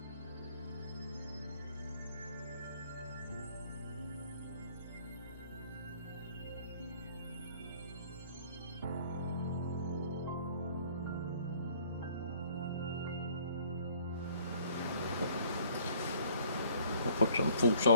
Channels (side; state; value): both; inverted; correlation -0.59